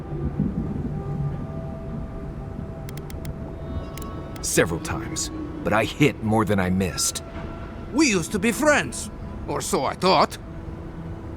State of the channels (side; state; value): both; identical; correlation 1.00